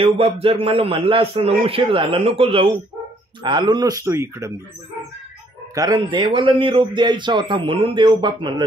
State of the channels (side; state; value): both; normal; correlation 0.65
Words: जर मला म्हणला असतं ना उशीर झाला नको जाऊ, आलो नसतो इकडं मी. कारण देवाला निरोप द्यायचा होता म्हणून देवबाप म्हणलं